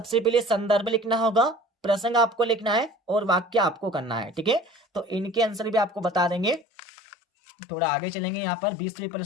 पहले संदर्भ लिखना होगा, प्रसंग आपको लिखना है और वाक्य आपको करना है। ठीक है, तो इनके आंसर भी आपको बता देंगे। थोड़ा आगे चलेंगे यहाँ पर 20वें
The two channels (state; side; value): drops out; right; at 6.7 s